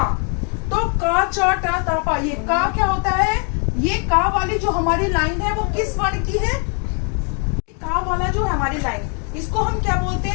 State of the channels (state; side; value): quieter; right; 39.4 dB